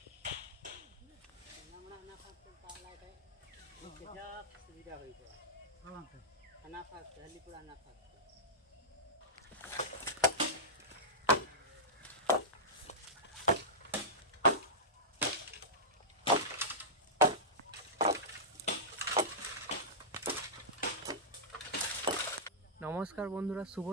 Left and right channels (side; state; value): both; normal; correlation -0.12